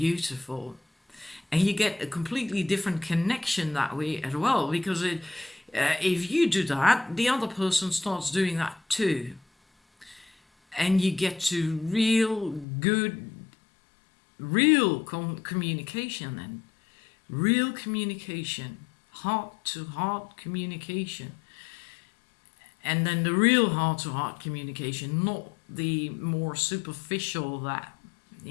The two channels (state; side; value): drops out; right; at 12.7 s